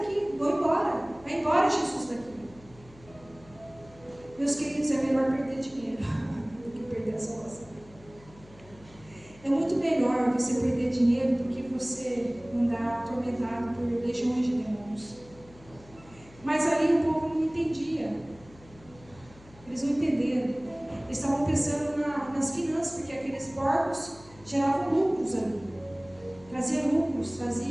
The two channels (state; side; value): noise; left; hum, 23 dB below the sound